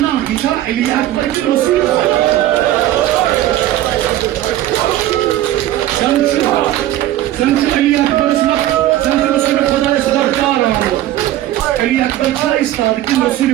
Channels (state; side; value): quieter; left; 13.9 dB